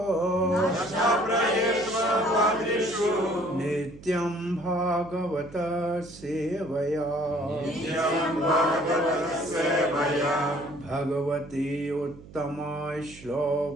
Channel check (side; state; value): right; noise; hum, 19 dB below the sound